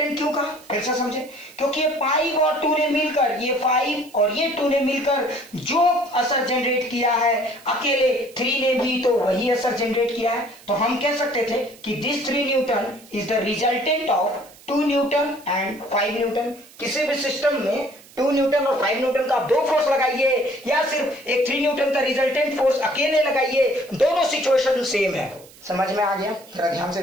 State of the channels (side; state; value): right; noise; hiss, 23 dB below the sound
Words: क्यों कहा, फिर से समझे, क्योंकि ये 5 और 2 ने मिलकर, ये 5 और ये 2 ने मिलकर जो असर जनरेट किया है अकेले 3 ने भी तो वही असर जनरेट किया है। तो हम कह सकते थे कि this 3 Newton is the resultant of 2 Newton and 5 Newton. किसी भी सिस्टम में 2 न्यूटन और 5 न्यूटन का 2 फोर्स लगाइए या सिर्फ एक 3 न्यूटन का रिजल्टेंट फोर्स अकेले लगाइए, दोनों सिचुएशन सेम है। समझ में आ गया? जरा ध्यान से